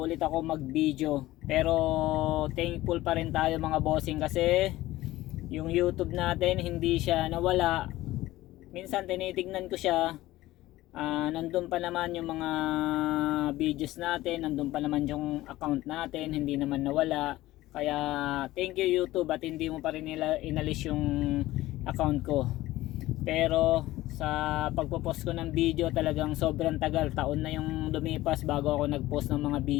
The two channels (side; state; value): right; quieter; 16.8 dB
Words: ulit ako mag video. Pero thankful pa rin tayo mga bossing kasi yung YouTube natin hindi siya nawala. Minsan tinitignan ko siya, nandun pa naman yung mga videos natin, nandun pa naman yung account natin, hindi naman nawala. Kaya thank you YouTube at hindi mo pa rin inalis yung account ko. Pero sa pagpo-post ko ng video talagang sobrang tagal, taon na yung lumipas bago ako nag-post ng mga